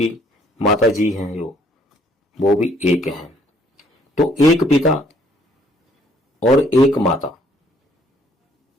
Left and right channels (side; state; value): both; normal; correlation 0.64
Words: माता जी हैं जो, वो भी एक हैं। तो एक पिता और एक माता